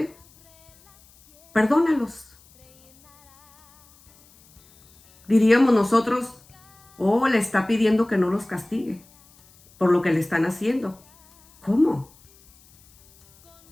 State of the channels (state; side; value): noise; left; hiss, 29 dB below the sound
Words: perdónalos. Diríamos nosotros: oh, le está pidiendo que no los castigue por lo que le están haciendo. ¿Cómo?